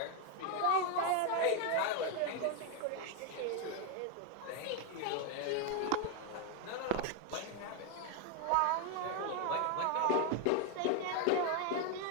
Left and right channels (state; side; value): different; both; correlation 0.01